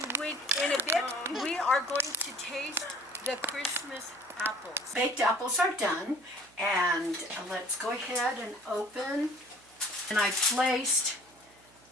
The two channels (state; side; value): noise; right; hum, 29 dB below the sound